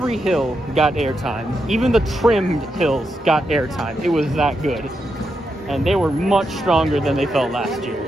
hill got airtime. Even the trimmed hills got airtime. It was that good. And they were much stronger than they felt last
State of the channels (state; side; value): normal; both; correlation 0.84